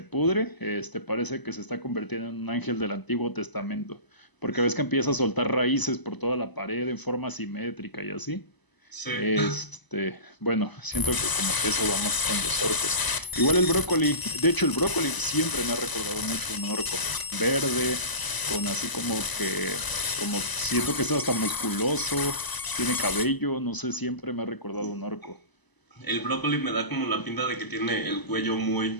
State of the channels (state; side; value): late; right; 1.0 ms